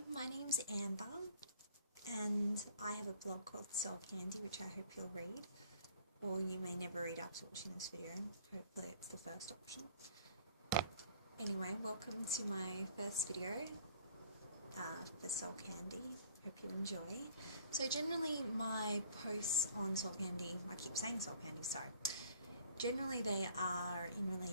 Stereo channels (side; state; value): both; inverted; correlation -0.54